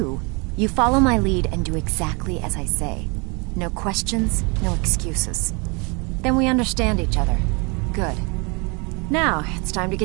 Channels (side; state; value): left; quieter; 30.7 dB